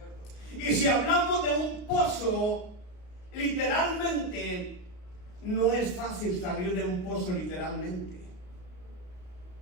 Y si hablamos de un pozo, literalmente, no es fácil salir de un pozo literalmente.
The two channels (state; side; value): late; right; 33 ms